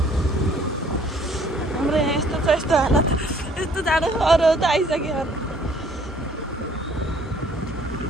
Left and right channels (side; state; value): both; normal; correlation 0.59